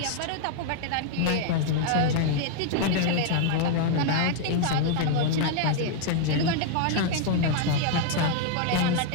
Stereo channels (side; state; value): both; different; correlation 0.00